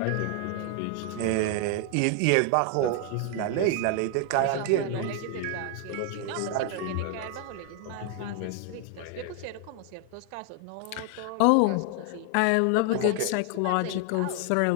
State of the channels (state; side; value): different; both; correlation 0.00